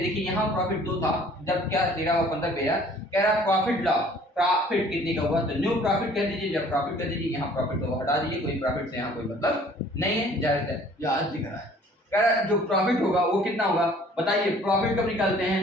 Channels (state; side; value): normal; both; correlation 0.54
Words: देखिए यहाँ प्रॉफिट 2 था जब क्या 13 और 15 पे कह रहा प्रॉफिट लाभ, प्रॉफिट कितने का हुआ तो न्यू प्रॉफिट कर दीजिए, जब प्रॉफिट कर दीजिए यहाँ प्रॉफिट को हटा दीजिए, कोई प्रॉफिट से यहाँ कोई मतलब नहीं है, जाहिर है यहाँ दिख रहा है। कह रहा जो प्रॉफिट होगा वो कितना होगा, बताइए प्रॉफिट कब निकालते